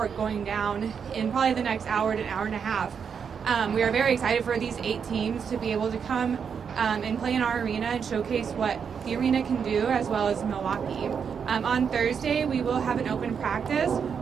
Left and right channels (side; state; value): left; quieter; 6.8 dB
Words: going down in probably the next hour to an hour and a half. We are very excited for these 8 teams to be able to come and play in our arena and showcase what the arena can do, as well as Milwaukee. On Thursday, we will have an open practice.